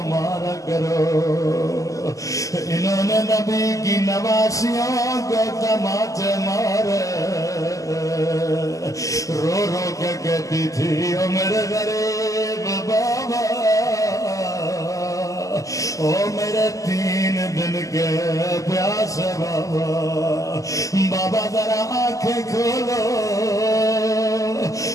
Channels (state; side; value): late; right; 0.16 ms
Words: مارا کرو۔ انہوں نے نبی کی نواسیوں کو تماچے مارے، رو رو کے کہتی تھی او میرے غریب بابا، او میرے 3 دن کے پیاسے بابا، بابا ذرا آنکھیں کھولو،